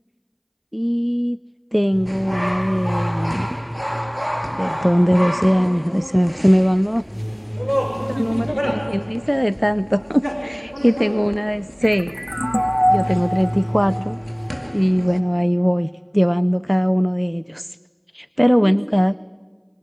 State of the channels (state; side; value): identical; both; correlation 1.00